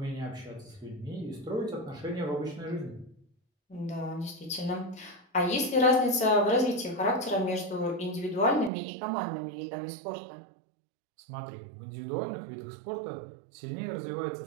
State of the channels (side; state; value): left; drops out; at 8.7 s